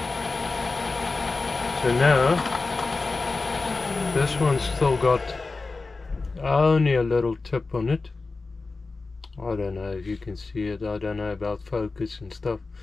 So now, this one's still got only a little tip on it. I don't know if you can see it. I don't know about focus and stuff.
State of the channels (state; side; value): quieter; right; 3.8 dB